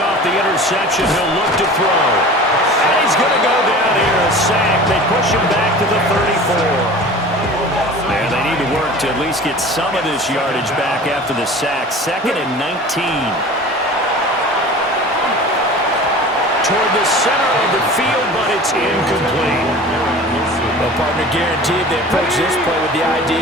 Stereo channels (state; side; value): normal; both; correlation 0.40